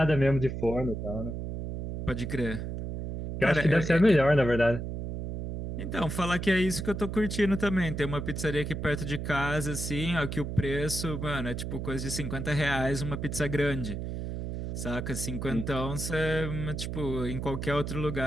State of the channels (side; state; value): right; noise; hum, 5 dB below the sound